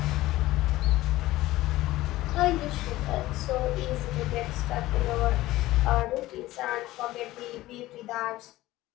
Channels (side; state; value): right; quieter; 17.0 dB